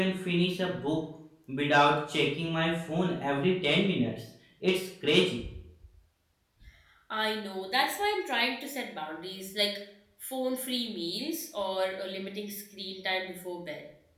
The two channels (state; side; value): identical; both; correlation 1.00